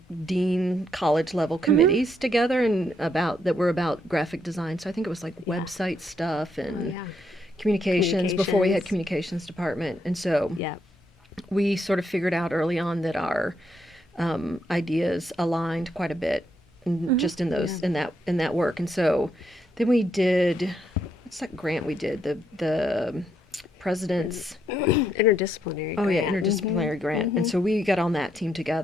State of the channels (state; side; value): normal; both; correlation 0.76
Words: dean college level committees together and that were about graphic design. So I think it was like website stuff and communications before we had communications department. And so we sort of figured out early on that our ideas aligned quite a bit just in those in that work. And so then we did, what's that grant we did? The president's interdisciplinary grant. Interdisciplinary grant. And so we got on that team